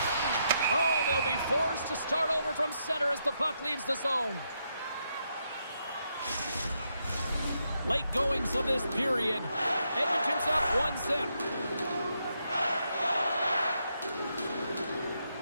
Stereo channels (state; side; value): inverted; both; correlation -0.80